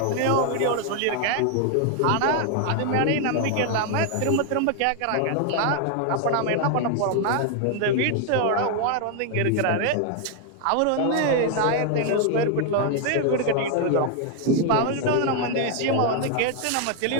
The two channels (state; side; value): different; both; correlation 0.00